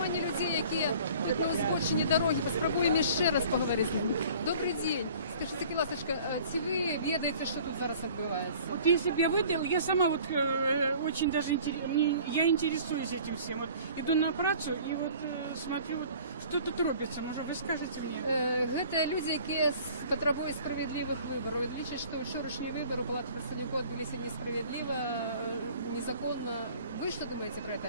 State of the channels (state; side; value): inverted; both; correlation -0.49